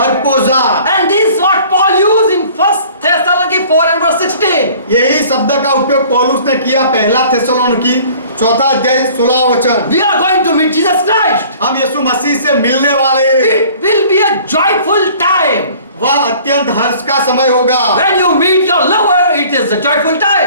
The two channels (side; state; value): both; inverted; correlation -0.50